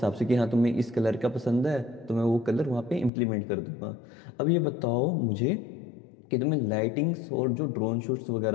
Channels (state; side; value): drops out; right; at 3.1 s